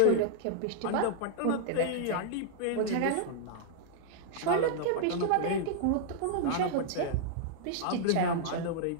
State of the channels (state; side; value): different; both; correlation -0.01